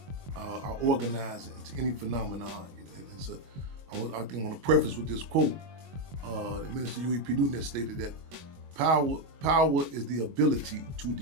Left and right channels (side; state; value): left; late; 22 ms